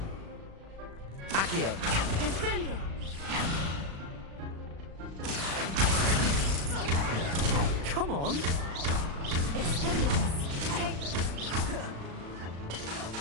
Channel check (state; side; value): late; left; 36 ms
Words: Accio! Defender! Come on! Expelliarmus!